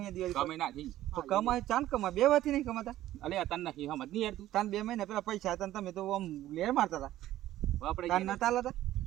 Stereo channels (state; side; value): quieter; left; 14.1 dB